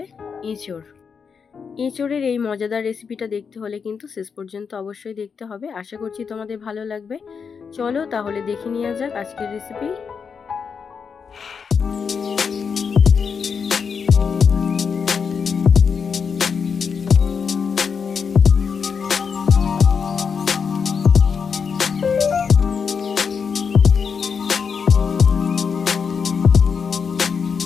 এঁচোড়। এঁচোড়ের এই মজাদার রেসিপিটা দেখতে হলে কিন্তু শেষ পর্যন্ত অবশ্যই দেখতে হবে। আশা করছি তোমাদের ভালো লাগবে। চলো তাহলে দেখে নেওয়া যাক আজকের রেসিপি।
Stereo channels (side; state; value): right; quieter; 6.1 dB